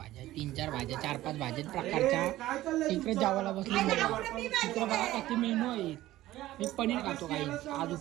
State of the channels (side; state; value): left; quieter; 15.6 dB